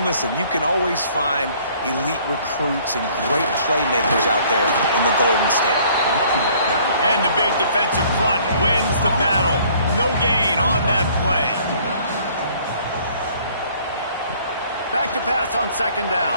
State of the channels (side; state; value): both; inverted; correlation -0.57